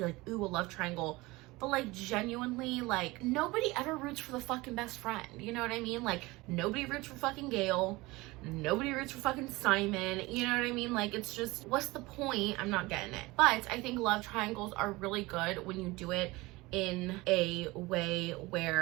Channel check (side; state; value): left; quieter; 21.7 dB